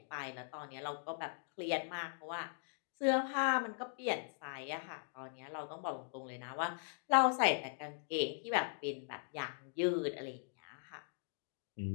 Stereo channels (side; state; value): right; silent; digital silence